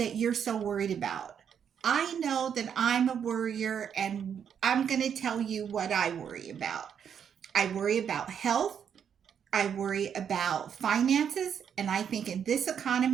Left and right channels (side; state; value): left; quieter; 8.0 dB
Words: you're so worried about. I know that I'm a worrier, and I'm going to tell you what I worry about. I worry about health. I worry about finances. And I think in this